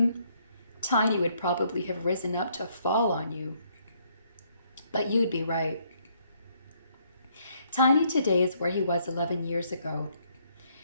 Tiny would probably have risen up to fall on you. But you'd be right. Tiny today is where he was 11 years ago,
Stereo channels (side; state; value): both; inverted; correlation -0.69